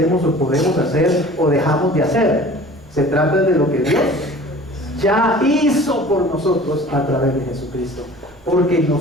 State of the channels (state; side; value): noise; right; rumble, 28 dB below the sound